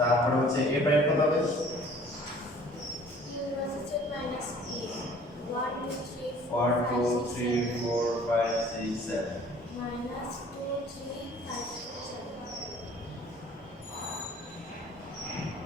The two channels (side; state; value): both; normal; correlation 0.52